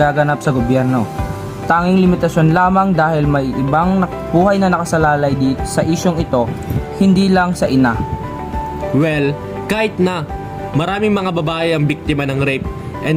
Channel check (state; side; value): identical; both; correlation 1.00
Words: sa gobyerno. Tanging limitasyon lamang dahil may ibang buhay na nakasalalay dito sa isyong ito, hindi lang sa ina. Well, kahit na, maraming mga babae ang biktima ng rape. And